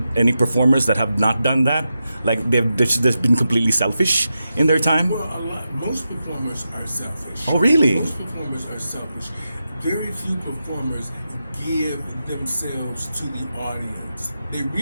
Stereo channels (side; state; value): both; inverted; correlation -0.89